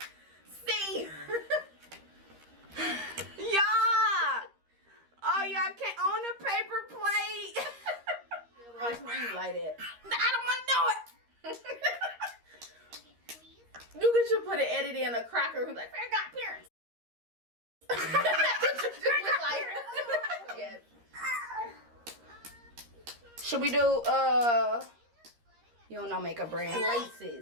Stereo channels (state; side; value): late; left; 13 ms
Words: See. Y'all. Oh, y'all can't own a paper plate. Why scream like that? I don't want to know it. You could just put an edit in a cracker who's like, Fair got parents. Yes. Should we do you don't know makeup brand?